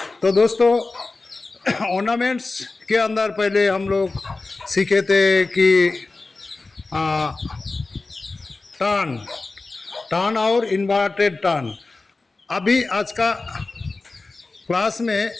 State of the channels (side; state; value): right; quieter; 3.5 dB